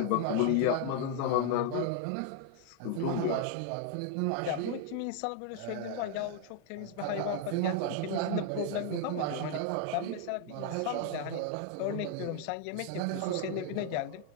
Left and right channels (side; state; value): both; different; correlation 0.00